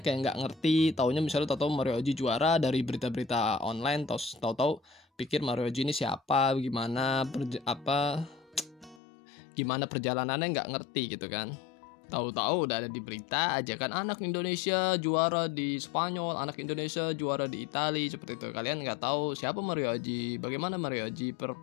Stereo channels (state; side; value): drops out; right; at 9.0 s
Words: yang nggak ngerti, taunya misalnya tahu Mario Aji juara dari berita-berita online, tahu-tahu pikir Mario Aji ini siapa, gimana perjalanannya, nggak ngerti gitu kan. Tahu-tahu udah ada di berita aja kan, anak Indonesia juara di Spanyol, anak Indonesia juara di Italia, seperti itu. Kalian nggak tahu siapa Mario Aji, bagaimana Mario Aji